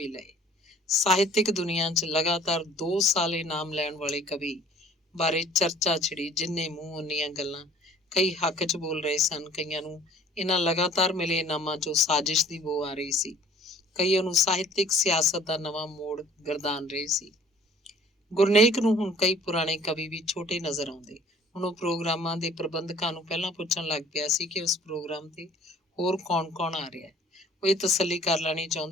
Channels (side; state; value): both; normal; correlation 0.52